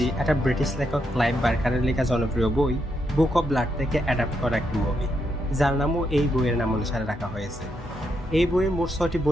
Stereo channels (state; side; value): normal; both; correlation 0.80